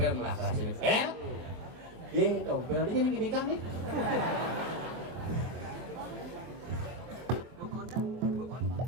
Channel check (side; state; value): left; late; 23 ms